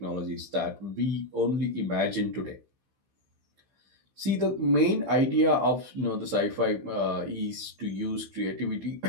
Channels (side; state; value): left; late; 15 ms